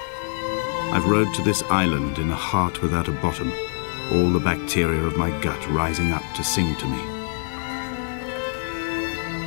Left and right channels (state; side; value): silent; right; 62 dB below the other